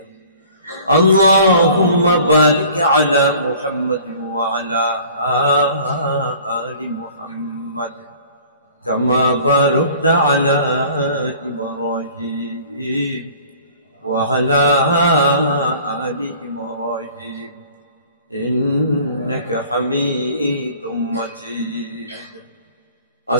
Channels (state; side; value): inverted; both; correlation -0.49